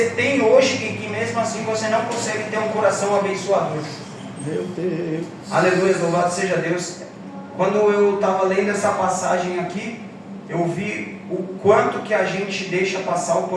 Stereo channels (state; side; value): identical; both; correlation 1.00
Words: tem hoje e que mesmo assim você não consegue ter um coração abençoador? Meu Deus. Aleluia, louvado seja Deus. Quando eu estava lendo essa passagem aqui, eu vi o quanto que a gente deixa passar a